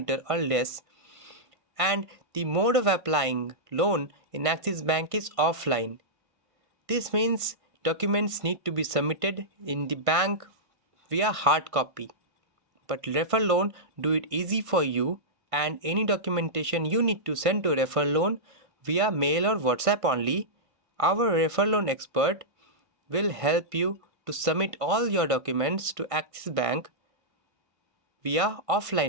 or less, and the mode of applying loan in Axis Bank is offline. This means documents need to be submitted in the bank via hard copy. But refer loan do it easy for you, and any documentation you need to send to refer loan via mail or WhatsApp only. Our refer loan expert will help you to submit all your documents to Axis Bank via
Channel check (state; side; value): late; left; 1.5 ms